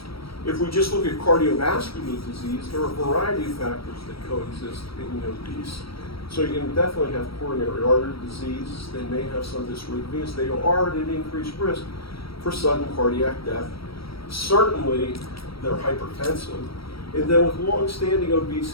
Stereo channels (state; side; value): late; right; 0.75 ms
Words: If we just look at cardiovascular disease, there are a variety of factors that coexist in the obese. So you can definitely have coronary artery disease. They may have some dysrhythmias. They are at an increased risk for sudden cardiac death. Certainly, they're hypertensive. And then with long-standing